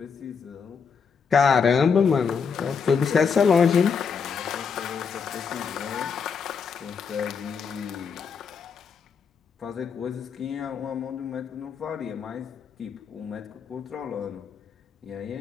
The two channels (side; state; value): right; quieter; 6.1 dB